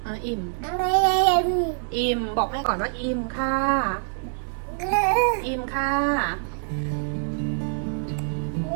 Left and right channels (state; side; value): silent; left; digital silence